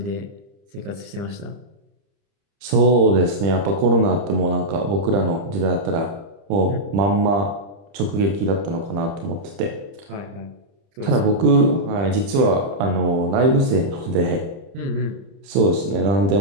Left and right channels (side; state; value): left; late; 30 ms